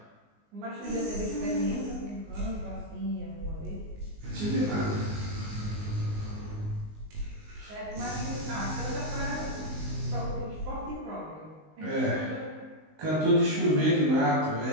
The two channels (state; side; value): late; left; 19 ms